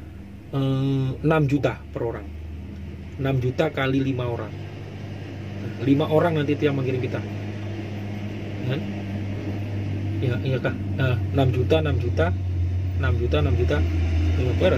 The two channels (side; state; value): both; identical; correlation 1.00